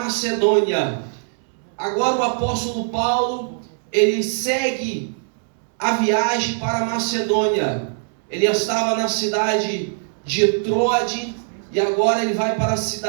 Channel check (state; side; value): silent; left; digital silence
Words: Agora o apóstolo Paulo, ele segue a viagem para a Macedônia. Ele estava na cidade de Troade e agora ele vai para a